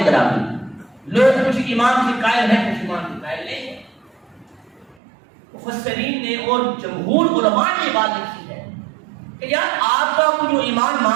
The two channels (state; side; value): drops out; left; at 5.0 s